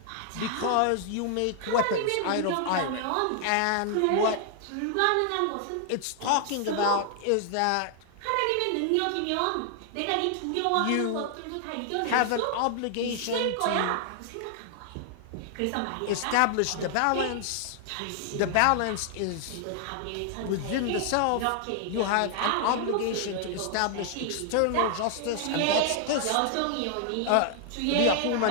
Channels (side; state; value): both; different; correlation 0.00